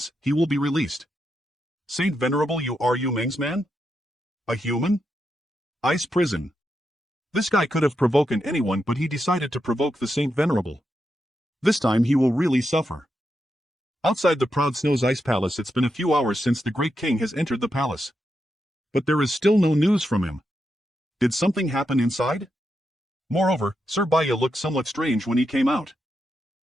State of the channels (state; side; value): normal; both; correlation 0.85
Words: he will be released. Saint Venerable, you Ryu Meng's man? A human? Ice prison. This guy could have provoked anyone, but he decided to provoke the Saint Venerable. This time he will really suffer. Outside the Proud Snow's ice palace, it's been a few hours since the great king has entered the palace. But there is still no news from him. Did something happen inside? Moreover, Sir Baya looked somewhat strange when he came out.